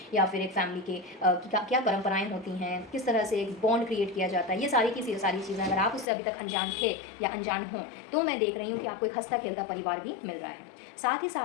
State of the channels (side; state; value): right; drops out; at 6.1 s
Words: या फिर एक फैमिली के क्या परंपराएं होती हैं, किस तरह से एक बॉन्ड क्रिएट किया जाता है, ये सारी की सारी चीज़ें अगर आप उससे अभी तक अनजान थे या अनजान हों, तो मैं देख रही हूँ कि आपको एक हंसता खेलता परिवार भी मिल रहा है। साथ ही